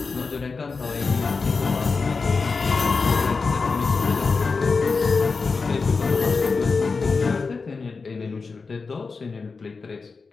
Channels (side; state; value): right; quieter; 4.5 dB